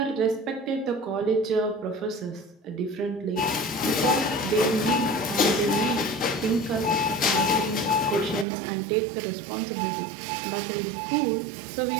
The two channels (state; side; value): drops out; left; at 8.5 s